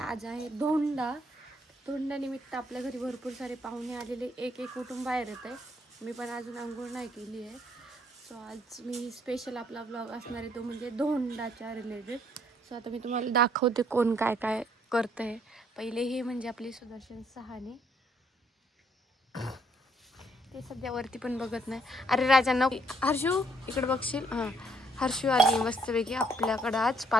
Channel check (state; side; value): normal; both; correlation 0.68